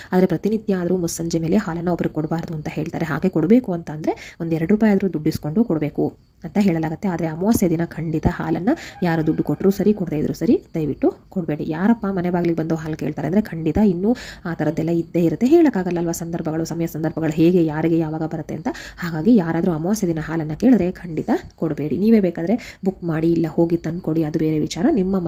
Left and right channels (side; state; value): both; identical; correlation 1.00